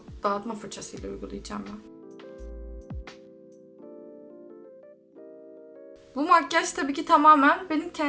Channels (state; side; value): identical; both; correlation 1.00